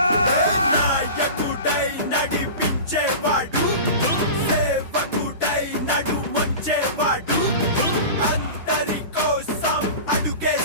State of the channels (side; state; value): both; inverted; correlation -0.32